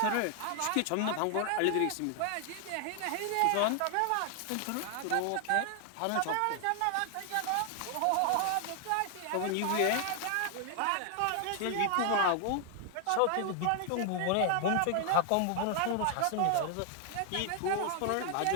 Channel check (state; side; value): different; both; correlation 0.00